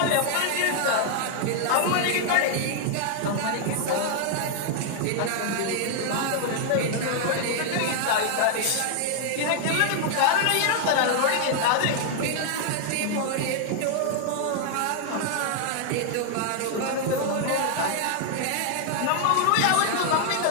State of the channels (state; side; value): different; both; correlation 0.00